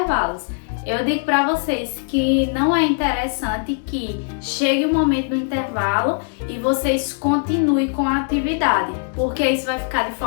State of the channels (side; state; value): right; silent; digital silence